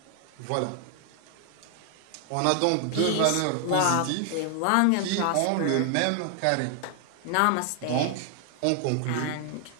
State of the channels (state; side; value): different; both; correlation 0.00